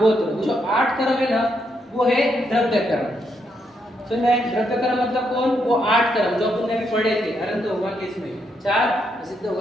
जो 8 कर्म है ना, वो है द्रव्य कर्म। तो मैं द्रव्य कर्म मतलब कौन? वो 8 कर्म जो अपन ने अभी पढ़े थे अनंत भगवान के इसमें 4 सिद्ध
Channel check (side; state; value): both; normal; correlation 0.78